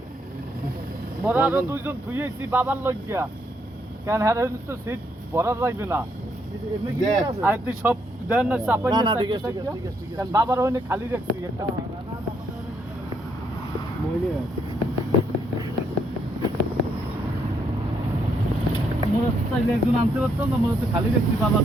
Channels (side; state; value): both; normal; correlation 0.74